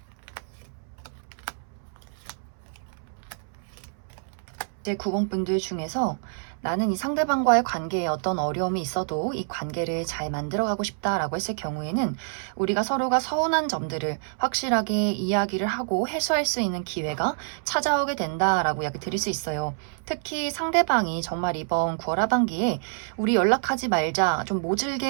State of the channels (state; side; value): silent; left; 60 dB below the other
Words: 이제 9번 분들 중에서 나는 이 상대방과의 관계에 어떤 어려움이 있어도 이 관계를 잘 만들어가고 싶다라고 했을 경우에는 우리가 서로가 서운한 점들을 확실하게 이야기를 하고 해소할 수 있는 기회가 찾아오게 된다라고 이야기 드릴 수 있어요. 특히 상대방이 정말 이번 9월 하반기에 우리 연락하지 말자 좀